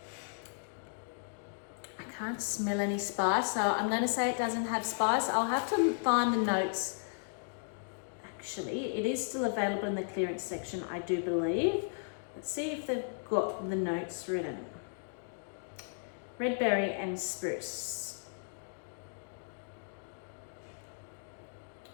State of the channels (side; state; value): right; silent; digital silence